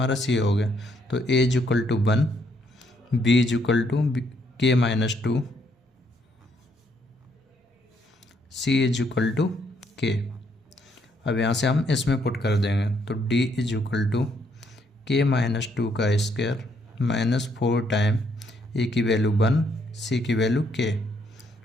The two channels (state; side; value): normal; both; correlation 0.71